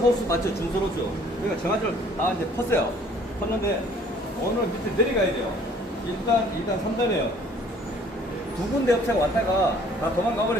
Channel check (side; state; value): both; normal; correlation 0.56